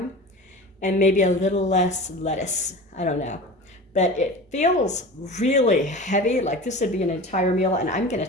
and maybe a little less lettuce. I don't know. But it feels really heavy, like this would be an entire meal, and I'm going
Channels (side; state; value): both; normal; correlation 0.34